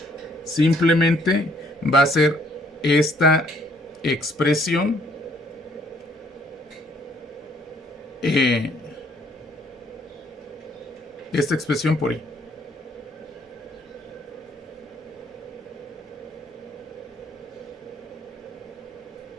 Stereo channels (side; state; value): both; normal; correlation 0.65